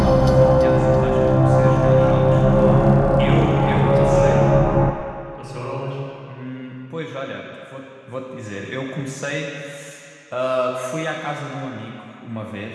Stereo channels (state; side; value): identical; both; correlation 1.00